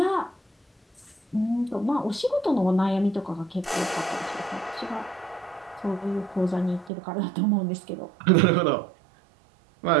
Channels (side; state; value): left; drops out; at 6.9 s